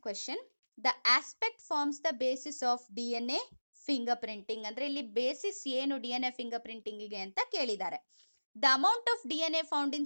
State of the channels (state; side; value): inverted; both; correlation -1.00